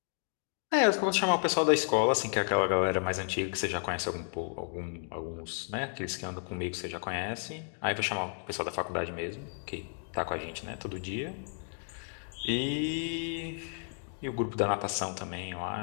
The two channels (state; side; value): silent; right; 56 dB below the other